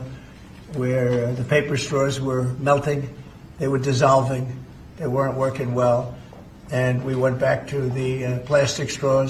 where the paper straws were melting. They were dissolving. They weren't working well. And we went back to the plastic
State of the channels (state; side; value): identical; both; correlation 1.00